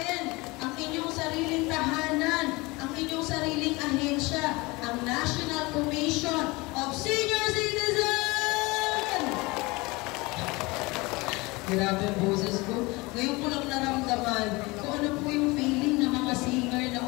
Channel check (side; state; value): right; quieter; 23.8 dB